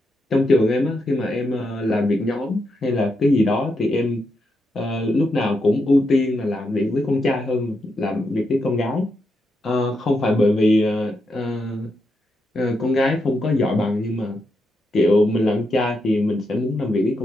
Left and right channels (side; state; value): both; normal; correlation 0.83